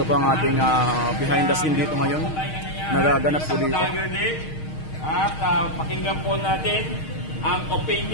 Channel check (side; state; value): right; late; 6.4 ms